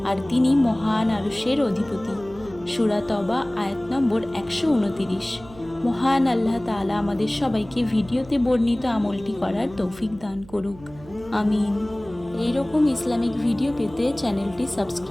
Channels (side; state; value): right; noise; hum, 20 dB below the sound